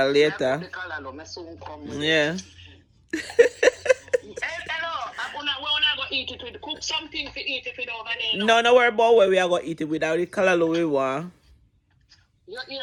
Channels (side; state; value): both; identical; correlation 1.00